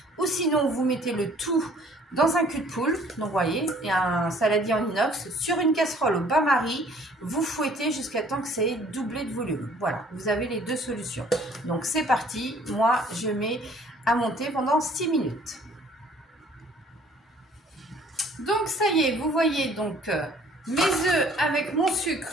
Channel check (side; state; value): both; normal; correlation 0.56